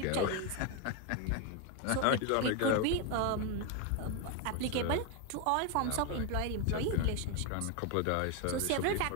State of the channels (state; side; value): different; both; correlation 0.01